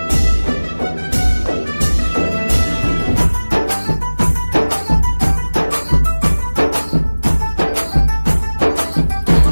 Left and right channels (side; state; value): both; inverted; correlation -1.00